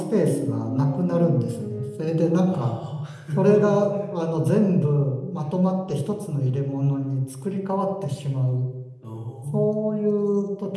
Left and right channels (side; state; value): both; identical; correlation 1.00